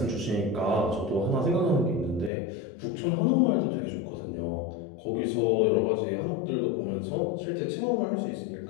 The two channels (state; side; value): drops out; right; at 2.3 s